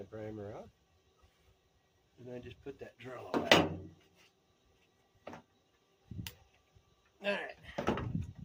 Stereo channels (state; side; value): identical; both; correlation 1.00